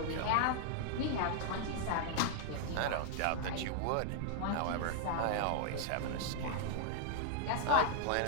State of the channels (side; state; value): both; different; correlation 0.00